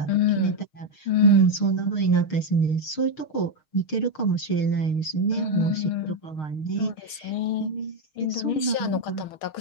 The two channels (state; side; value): late; right; 6.4 ms